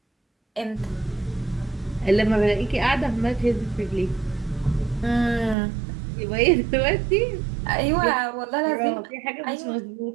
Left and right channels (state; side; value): drops out; left; at 5.6 s